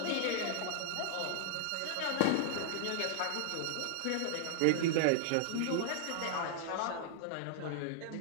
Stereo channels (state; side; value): different; both; correlation -0.01